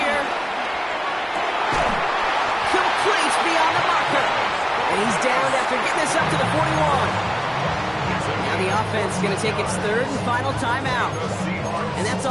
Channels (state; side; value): identical; both; correlation 1.00